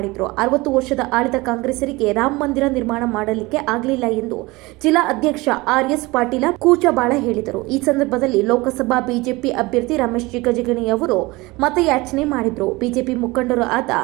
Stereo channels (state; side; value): quieter; left; 22.3 dB